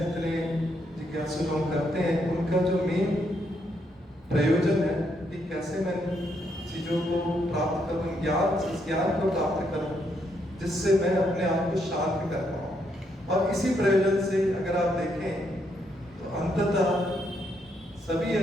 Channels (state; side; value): normal; both; correlation 0.76